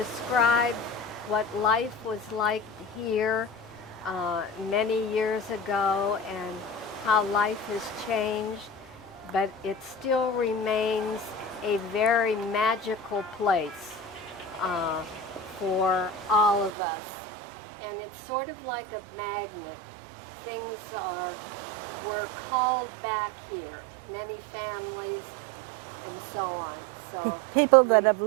what life was like here many years ago, and how life has changed, but it still remains a very magical place for all of us. And it's sort of like a magnet. Things were called back here, many families and so on. So People that we- have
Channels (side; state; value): left; drops out; at 16.7 s